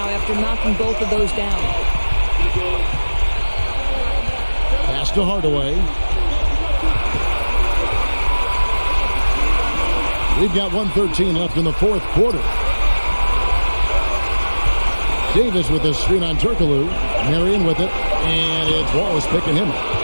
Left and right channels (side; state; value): both; inverted; correlation -1.00